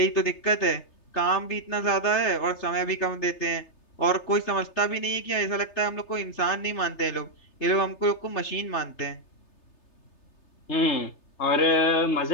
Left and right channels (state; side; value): late; right; 3.3 ms